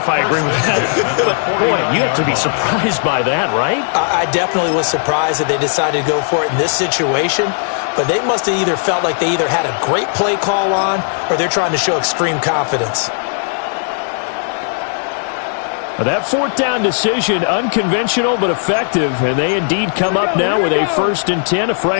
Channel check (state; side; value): silent; right; digital silence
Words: I agree with that. But, boy, you have to be surprised by that, right? I definitely was surprised that they decided to go for it in this situation, but they must have either felt like they either had a great play call on or they're trying to show extreme confidence. That 4th down decision, unconventional but effective, and they indeed come up now with a 1st and 10, a